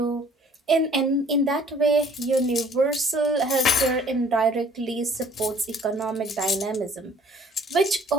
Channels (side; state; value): both; normal; correlation 0.55